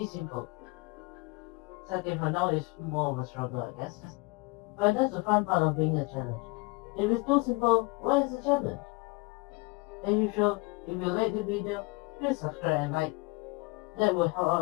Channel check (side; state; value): right; quieter; 26.9 dB